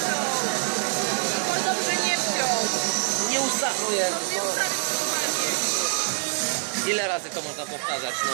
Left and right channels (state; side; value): silent; left; 62 dB below the other